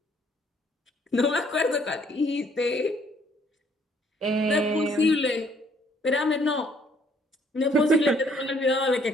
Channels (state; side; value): normal; both; correlation 0.64